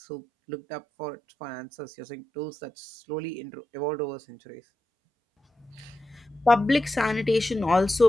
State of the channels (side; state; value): both; normal; correlation 0.89